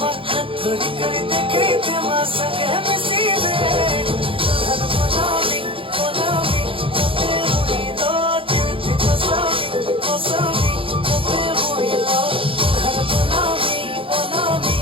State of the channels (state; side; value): late; left; 0.26 ms